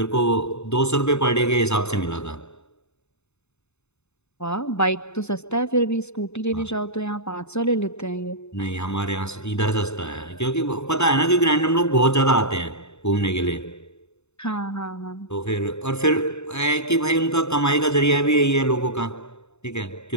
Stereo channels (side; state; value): right; late; 0.81 ms